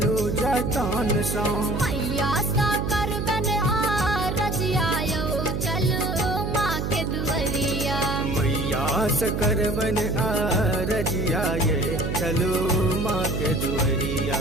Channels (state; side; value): noise; right; hum, 1 dB below the sound